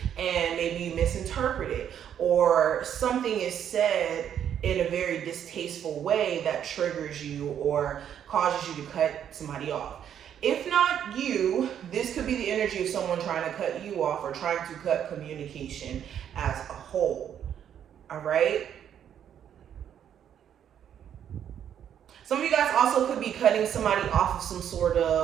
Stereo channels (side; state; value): left; quieter; 9.3 dB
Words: and maybe you misinterpret it, or something is said in a very distasteful way that triggers you or causes you to cut somebody off. If not you, this could be the energy of someone trying to cut you off or trying to cut communication as a whole. All right? Some of you guys also could be cutting somebody off of some sort